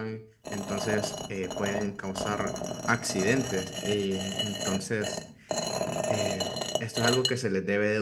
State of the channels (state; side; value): identical; both; correlation 1.00